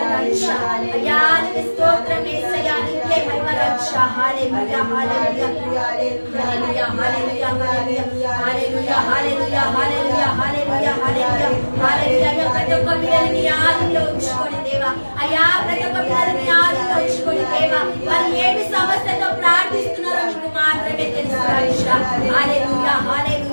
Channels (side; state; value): both; inverted; correlation -1.00